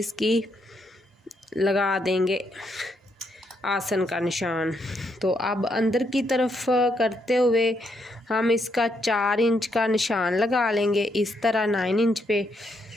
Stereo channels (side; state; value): both; normal; correlation 0.77